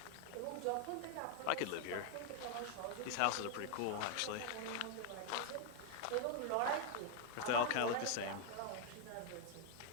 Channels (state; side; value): different; both; correlation 0.00